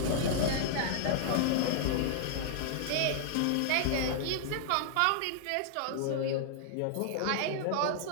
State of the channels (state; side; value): different; both; correlation -0.01